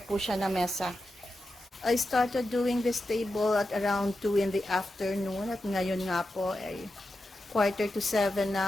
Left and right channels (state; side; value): normal; both; correlation 0.90